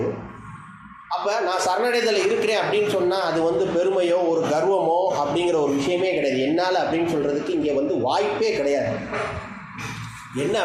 அப்போ நான் சரணடைதல் இருக்கிறேன் அப்படின்னு சொன்னால் அது பெருமையோ ஒரு கர்வமோ அப்படிங்கிற ஒரு விஷயமே கிடையாது. என்னால் அப்படின்னு சொல்கிறதுக்கு இங்கே வாய்ப்பே கிடையாது. என்ன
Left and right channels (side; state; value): both; identical; correlation 1.00